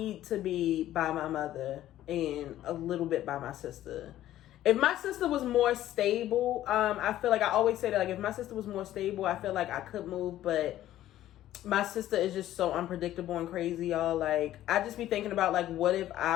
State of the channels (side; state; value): right; quieter; 13.3 dB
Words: to be by my mother and a little bit by my sister. If my sister was more stable, I feel like I always say that, like, if my sister was more stable, I feel like I could move, but my sister is just so unpredictable and crazy, y'all. Like, I just be thinking about, like, what if